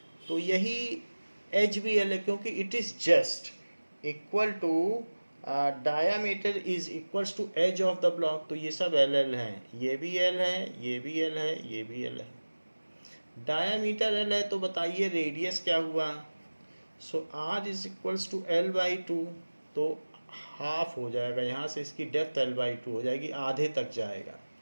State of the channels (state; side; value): inverted; both; correlation -1.00